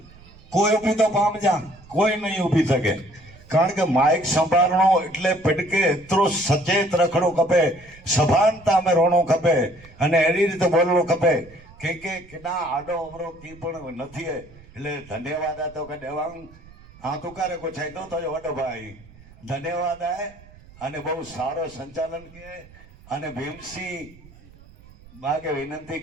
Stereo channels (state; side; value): noise; right; rumble, 23 dB below the sound